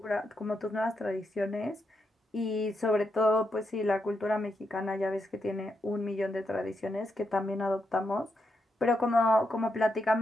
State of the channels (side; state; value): both; normal; correlation 0.83